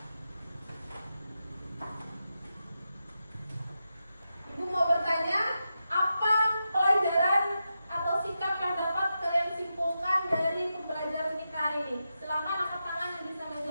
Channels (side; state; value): both; inverted; correlation -0.89